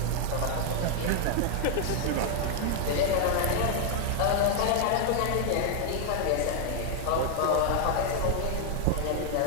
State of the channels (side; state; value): both; different; correlation 0.00